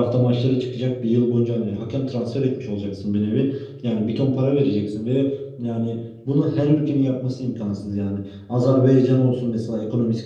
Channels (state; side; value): identical; both; correlation 1.00